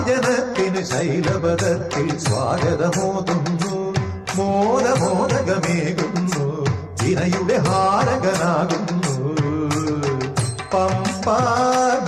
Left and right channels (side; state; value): both; identical; correlation 1.00